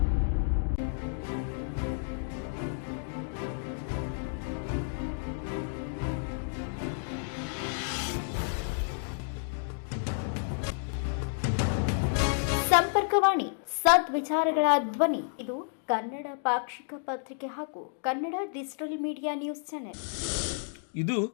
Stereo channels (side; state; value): right; silent; digital silence